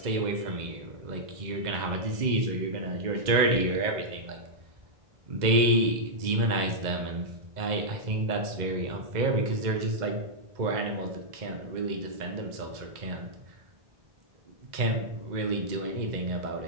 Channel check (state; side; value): late; left; 2.0 ms